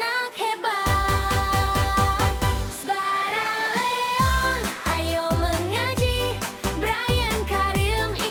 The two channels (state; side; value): identical; both; correlation 1.00